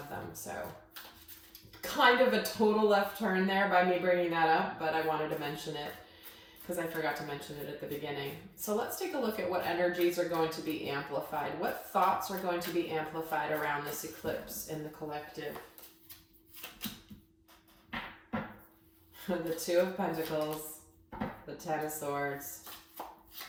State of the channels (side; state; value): both; identical; correlation 1.00